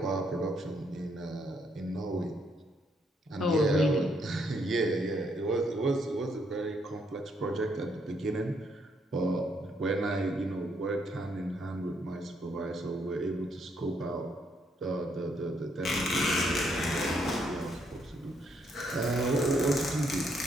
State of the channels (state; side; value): normal; both; correlation 0.73